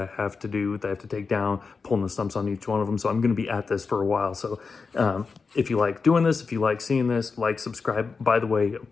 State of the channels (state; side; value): quieter; right; 4.8 dB